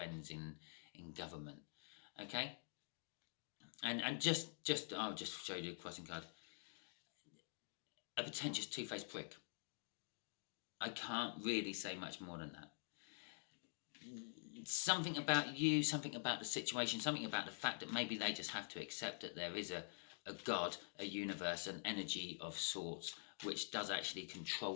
in government. Okay? And I'll just show you the crossing card. A pretentious two-faced prick. I can't really say much more than that. Something about you, something about the situation, something about the fact that maybe they just have to accept that there is a God, a universe, an energy of sorts, which does actually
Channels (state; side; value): silent; right; digital silence